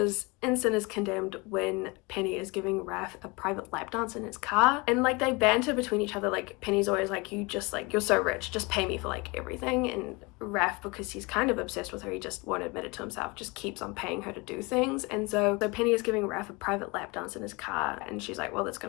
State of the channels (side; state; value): right; quieter; 26.6 dB